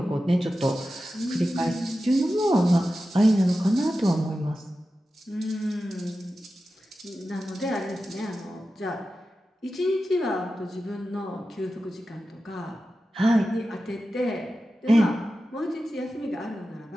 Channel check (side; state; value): both; normal; correlation 0.93